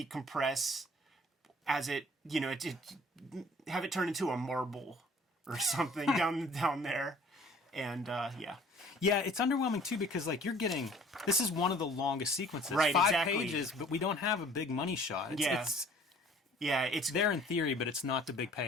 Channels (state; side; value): normal; both; correlation 0.52